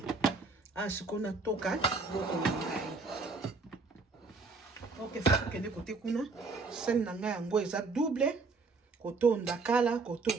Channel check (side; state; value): left; quieter; 4.0 dB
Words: Awa sikoyo na toka biloko na ngai. Ok, fufu kende kote kuna sene na ngai yango eza double. Koto ndakala, koto